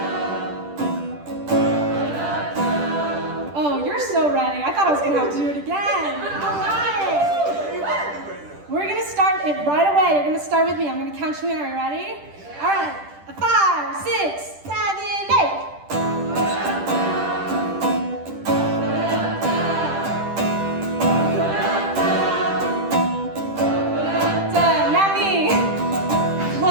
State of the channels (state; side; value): late; left; 10 ms